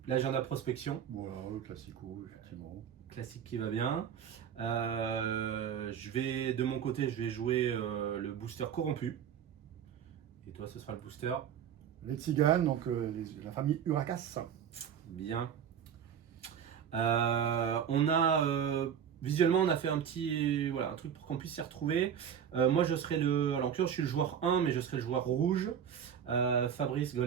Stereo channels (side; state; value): left; quieter; 8.5 dB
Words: L'agenda prospection, Voilà, le classico, effectivement. classique qui va bien. De mon côté, je vais jouer le booster corrompu. Et toi, ce sera le booster. Les tziganes, donc la famille Uracas. Bien. Visuellement, on a fait un truc pour qu'on puisse s'y retrouver. Moi, je serai alors je suis le joueur 1, mais je serai le joueur rouge. Fabrice